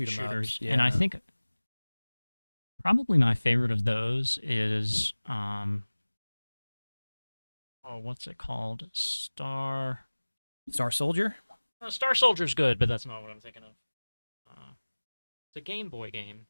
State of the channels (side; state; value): both; inverted; correlation -1.00